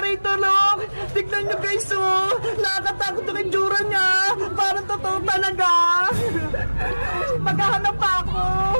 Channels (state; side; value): inverted; both; correlation -1.00